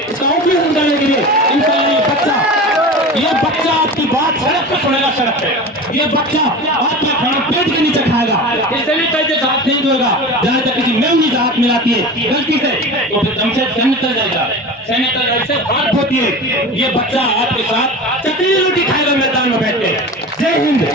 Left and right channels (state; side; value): normal; both; correlation 0.32